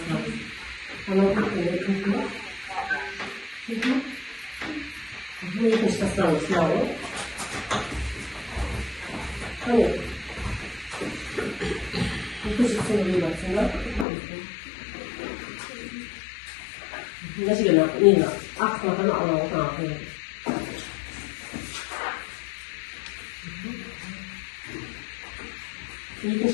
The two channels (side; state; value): right; drops out; at 14.1 s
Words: Ama kırkları kırklar. Bu ikinci tasarım sınavı. Hani ikinci sınavı baksana. Nasıl gelen? Nina. Akmadan alalım. İkinci